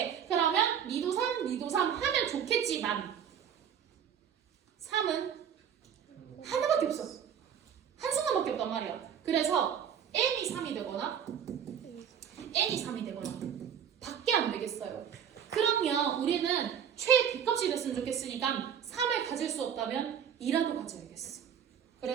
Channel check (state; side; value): quieter; left; 8.5 dB